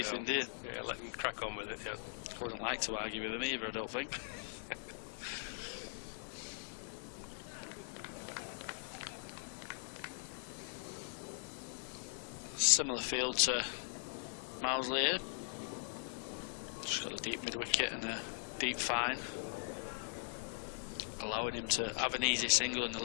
do you? Yeah, let him crack on with it, yeah. I wouldn't like to argue with him either, I don't think. Similar field to Mousley here. Just got a deep mid-wicket and a deep fine, allowing him to have an easy single on the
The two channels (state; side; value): silent; right; digital silence